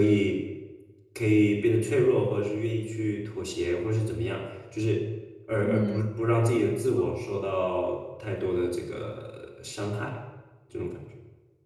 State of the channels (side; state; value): both; identical; correlation 1.00